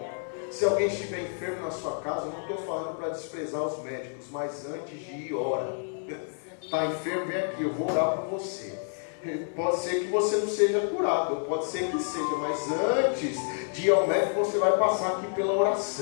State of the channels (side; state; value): right; silent; 59 dB below the other